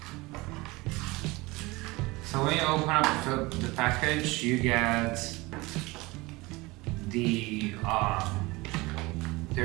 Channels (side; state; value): left; quieter; 22.6 dB